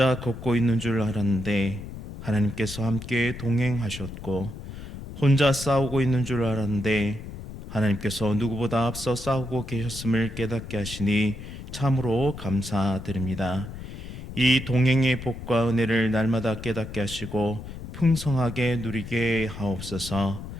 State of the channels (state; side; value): noise; left; rumble, 11 dB below the sound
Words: 걷고 있는 줄 알았는데 하나님께서 함께 동행하셨고, 혼자 싸우고 있는 줄 알았는데 하나님께서 누구보다 앞서 싸우고 계셨음을 깨닫게 하시니 참으로 감사드립니다. 이 동행의 복과 은혜를 날마다 깨닫게 하시고 풍성하게 누리게 하옵소서.